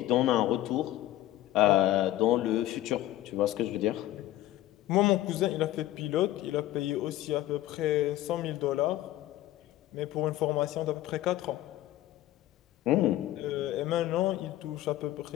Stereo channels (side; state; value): right; quieter; 14.6 dB